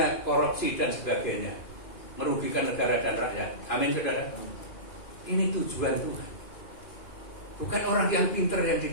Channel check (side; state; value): right; late; 2.5 ms